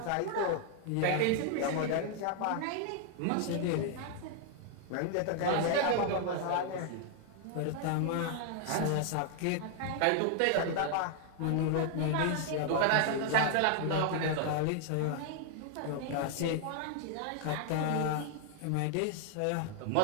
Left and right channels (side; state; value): both; different; correlation 0.00